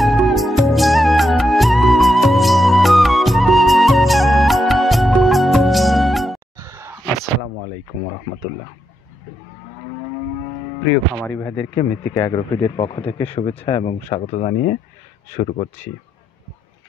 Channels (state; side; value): normal; both; correlation 0.82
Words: আসসালামু আলাইকুম রহমতুল্লাহ। প্রিয় খামারি ভাইদেরকে মৃত্তিকা অ্যাগ্রো ফিডের পক্ষ থেকে শুভেচ্ছা এবং স্বাগত জানিয়ে শুরু করছি।